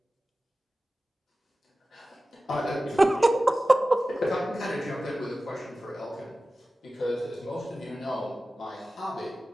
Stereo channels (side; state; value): both; normal; correlation 0.95